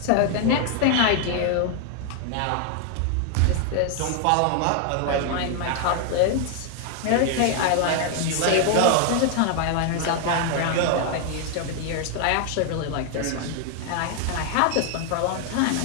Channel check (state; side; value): different; both; correlation 0.00